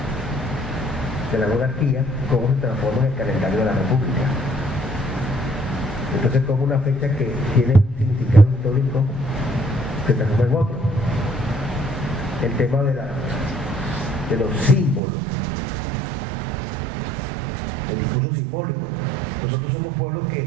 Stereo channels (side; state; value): left; drops out; at 15.0 s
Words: de la monarquía, cómo se transforma en el calendario de la república. Entonces como una fecha que tiene un significado histórico se transforma en otro. El tema de los símbolos, el discurso simbólico. Nosotros somos pueblos